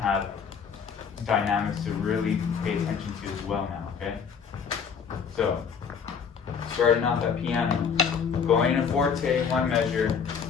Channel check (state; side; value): quieter; right; 6.5 dB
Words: have dynamics to really pay attention to as well now, okay? So, starting off at piano, going in a forte, 1 measure,